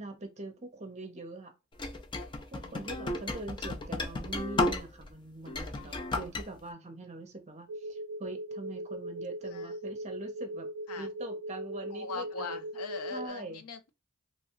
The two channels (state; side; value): normal; both; correlation 0.19